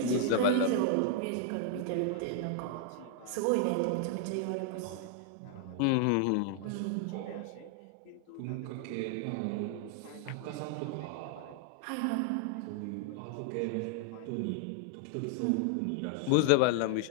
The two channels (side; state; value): both; different; correlation 0.00